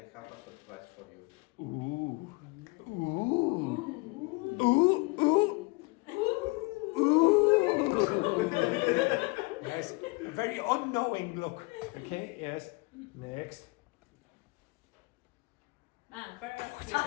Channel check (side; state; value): right; quieter; 27.0 dB